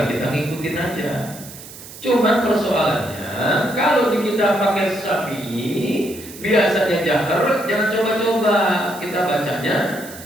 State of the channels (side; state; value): right; noise; hiss, 16 dB below the sound